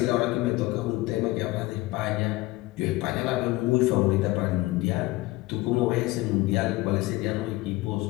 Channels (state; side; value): quieter; right; 20.1 dB